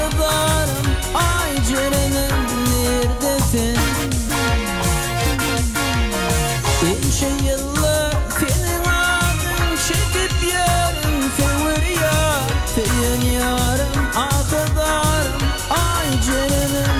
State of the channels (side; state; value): both; identical; correlation 1.00